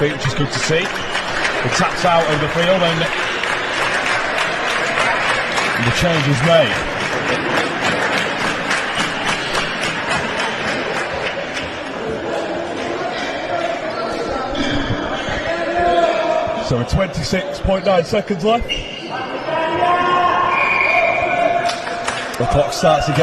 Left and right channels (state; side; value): identical; both; correlation 1.00